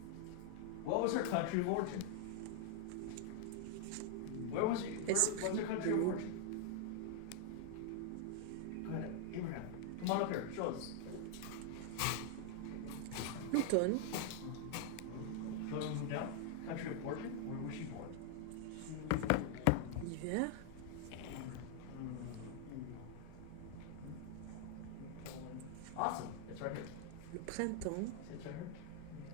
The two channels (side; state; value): both; different; correlation 0.00